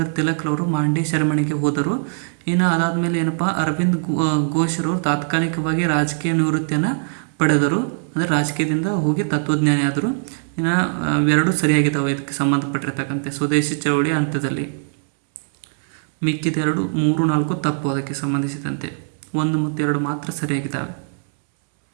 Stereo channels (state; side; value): silent; left; 65 dB below the other